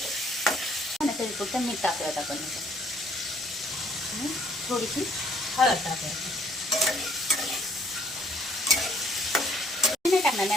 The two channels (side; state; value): both; normal; correlation 0.63